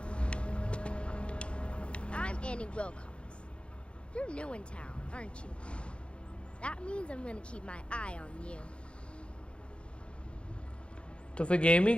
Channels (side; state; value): right; late; 0.057 ms